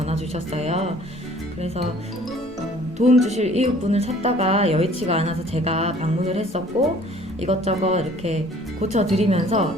주셨어요. 그래서 도움 주실 이웃분을 찾다가 여의치가 않아서 제가 방문을 했었고 이것저것 이렇게 고쳐드리면서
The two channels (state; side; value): normal; both; correlation 0.53